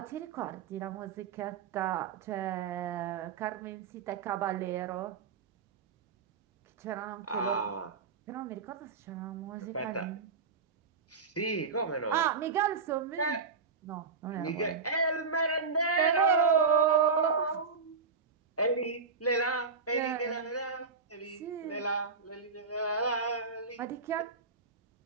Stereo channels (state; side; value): quieter; left; 5.0 dB